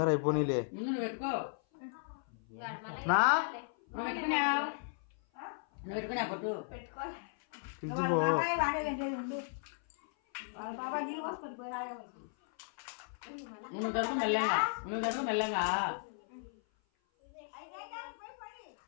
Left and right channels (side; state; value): right; silent; 54 dB below the other